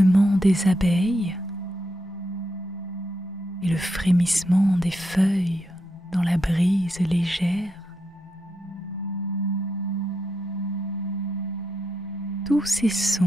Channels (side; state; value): both; normal; correlation 0.83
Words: des abeilles et le frémissement des feuilles dans la brise légère. Tous ces